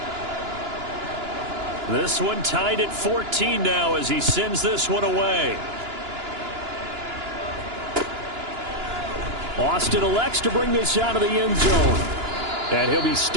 This one tied at 14 now as he sends this one away. Austin elects to bring this out of the end zone. And he'll be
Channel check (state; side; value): late; left; 2.9 ms